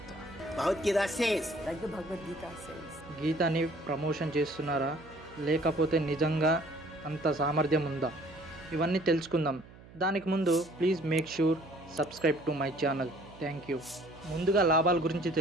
Bhagavad Gita says. Like the Bhagavad Gita says. గీతని ప్రమోషన్ చేస్తున్నారా, లేకపోతే నిజంగా అంత సామర్థ్యం ఉందా? ఇవన్నీ తెలుసుకుందాం. దానికి ముందు please make sure subscribe to my channel. Thank you. ముందుగా లాభాల గురించి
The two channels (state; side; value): noise; right; hum, 21 dB below the sound